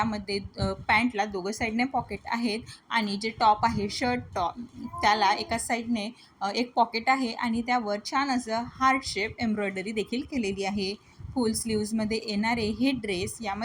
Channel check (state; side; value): identical; both; correlation 1.00